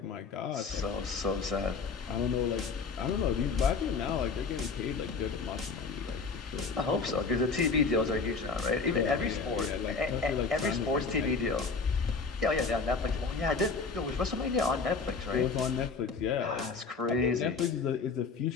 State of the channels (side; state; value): right; quieter; 4.7 dB